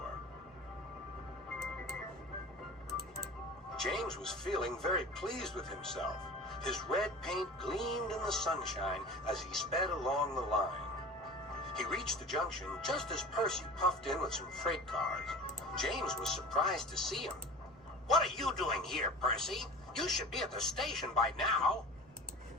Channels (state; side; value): normal; both; correlation 0.38